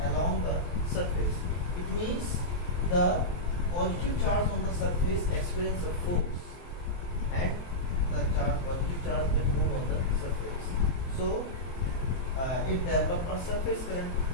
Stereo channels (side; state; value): right; late; 23 ms